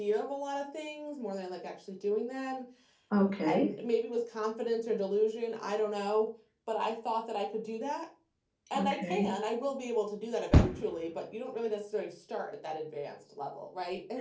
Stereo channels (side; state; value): both; identical; correlation 1.00